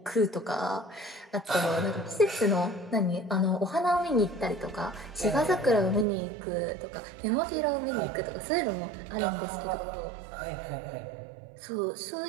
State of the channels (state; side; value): drops out; left; at 6.1 s